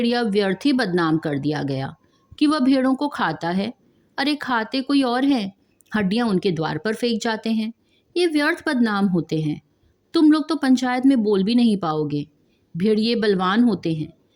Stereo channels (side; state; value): both; identical; correlation 1.00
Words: व्यर्थ ही बदनाम कर दिया गया कि वह भेड़ों को खाता है। अरे खाते कोई और है, हड्डियां उनके द्वार पर फेंक जाते हैं। ये व्यर्थ बदनाम होते हैं। तुम लोग तो पंचायत में बोल भी नहीं पाओगे। भेड़िए बलवान होते हैं,